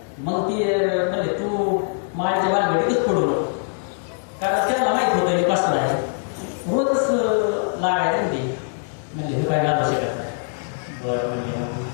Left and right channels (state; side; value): silent; right; digital silence